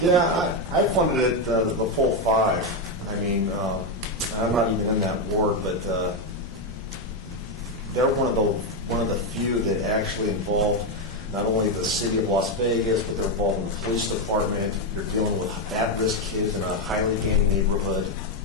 Yeah, I funded it, the full 5. I mean, I'm not even in that board, but they're one of the few that actually involved not only the city of Las Vegas, but they're involved in the police department. You're dealing with at-risk kids in a highly gated neighborhood,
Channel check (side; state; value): both; normal; correlation 0.06